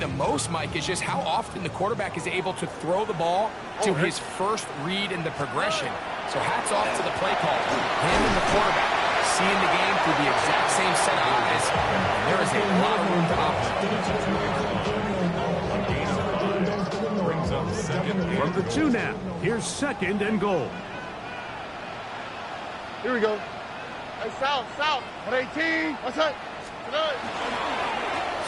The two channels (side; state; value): both; identical; correlation 1.00